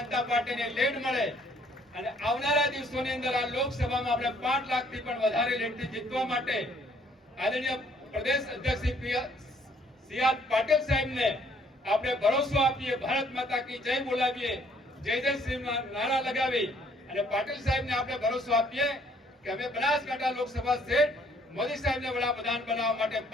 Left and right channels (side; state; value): both; normal; correlation 0.63